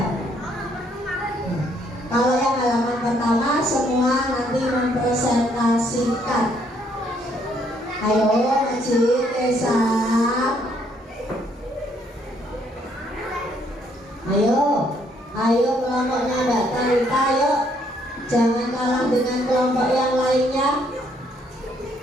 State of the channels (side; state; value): both; normal; correlation 0.69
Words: Kalau yang halaman pertama semua nanti mempresentasikan. Ayo Majid, Esa. Ayo kelompoknya Mbak Tarita, ayo. Jangan kalah dengan kelompok yang lainnya.